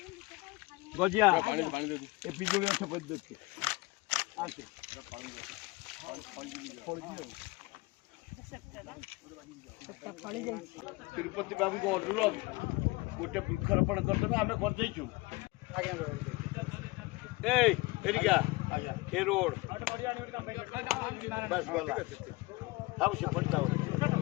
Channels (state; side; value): quieter; right; 23.3 dB